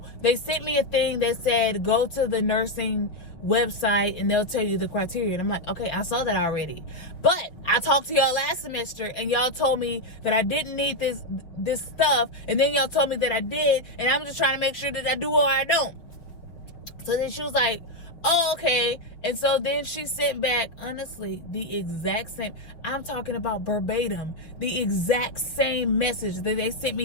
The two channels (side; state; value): right; late; 6.0 ms